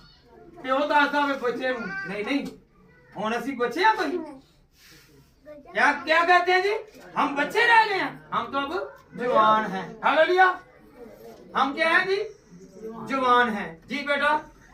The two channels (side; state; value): both; identical; correlation 1.00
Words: प्यो दसदा वे बच्चे नू नहीं नहीं हुण असीं बच्चे आ कोई? क्या क्या कहते हैं जी? हम बच्चे रह गए हैं, हम तो अब जवान हैं। हालेलुया। हम क्या हैं जी? जवान हैं जी। बेटा